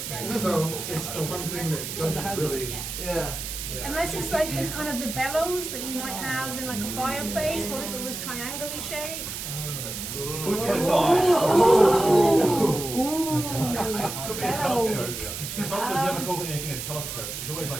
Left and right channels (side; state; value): right; noise; hiss, 6 dB below the sound